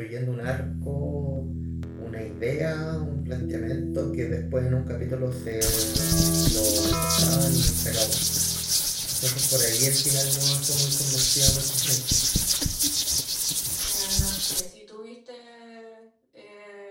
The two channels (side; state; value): both; identical; correlation 1.00